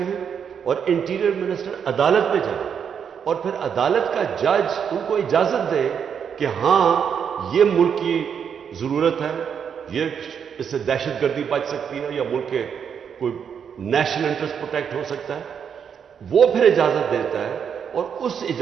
اور انٹیریئر منسٹر عدالت میں جائے اور پھر عدالت کا جج ان کو اجازت دے کہ ہاں یہ ملک کی ضرورت ہے، یہ اس سے دہشت گردی بچ سکتی ہے یا ملک کے کوئی نیشنل انٹرسٹ پروٹیکٹ ہو سکتا ہے، وہ پھر اجازت دیتا ہے اور اس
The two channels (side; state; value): left; quieter; 7.5 dB